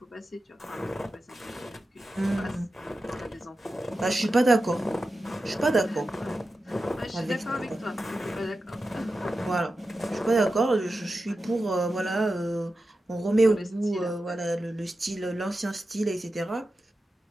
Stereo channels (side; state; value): both; normal; correlation 0.92